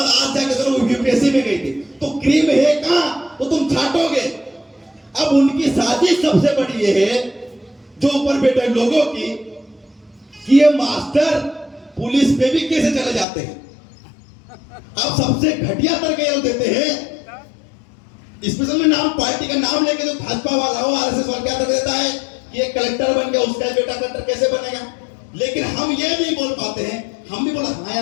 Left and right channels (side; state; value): right; drops out; at 13.2 s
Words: आज जाकर तो यूपीएससी में गई थी। तो क्रीम है कहां? तो तुम छाटोगे। अब उनकी साजिश सबसे बड़ी ये है जो ऊपर बैठे लोगों की, कि ये मास्टर पुलिस पे भी कैसे चले जाते हैं। अब सबसे घटिया तरीके देते हैं, स्पेशल में नाम, पार्टी का नाम लेके जो भाजपा वाला हो, आरएसएस वाला क्या कर देता है कि ये कलेक्टर बन गया, उसका बेटा कलेक्टर कैसे बनेगा। लेकिन हम ये नहीं बोल पाते हैं। हम भी बोला हाँ